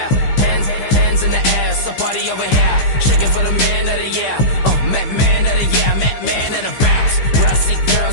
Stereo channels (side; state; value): right; late; 15 ms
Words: Hands in the air. It's a party over here. Shaking for the man of the year. Man of the year. Man of the bounce. Brassy